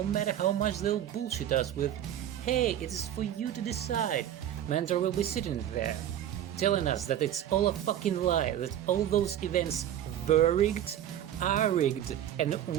matter how much they'll bullshit us with, "Hey, it is for you to decide," Mandra will be sitting there, telling us that it's all a fucking lie, that all those events were rigged, are rigged, and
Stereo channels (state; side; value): quieter; left; 11.0 dB